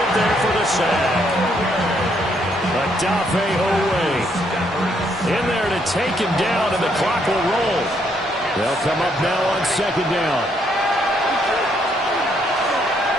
there for the sack. Adafe Owe in there to take him down, and the clock will roll. They'll come up now on second down.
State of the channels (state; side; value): normal; both; correlation 0.72